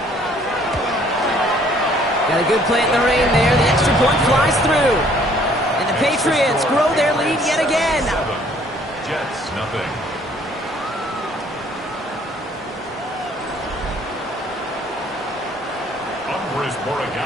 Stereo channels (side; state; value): both; normal; correlation 0.60